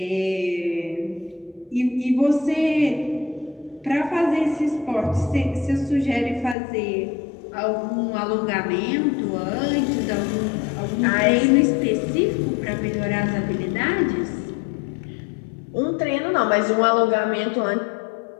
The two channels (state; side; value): drops out; right; at 6.6 s